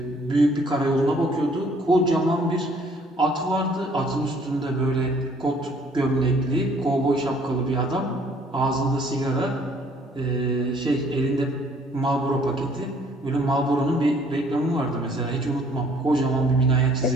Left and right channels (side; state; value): both; normal; correlation 0.60